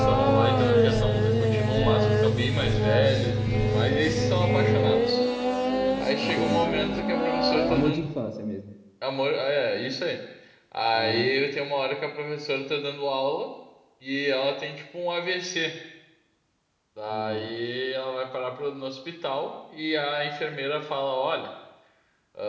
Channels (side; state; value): both; identical; correlation 1.00